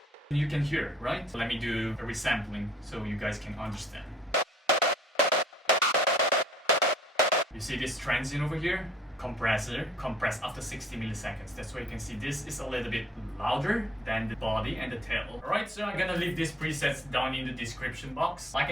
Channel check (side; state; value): both; normal; correlation 0.58